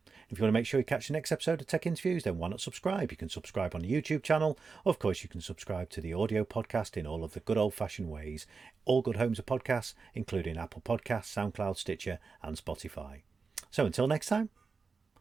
If you want to make sure you catch the next episode of Tech Interviews, then why not subscribe? You can subscribe on the YouTube channel. Of course, you can subscribe to the audio podcast in all of the good old-fashioned ways. All good homes of podcasts, including Apple Podcasts, SoundCloud, Stitcher, and Spotify. So until next time,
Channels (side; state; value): left; quieter; 4.7 dB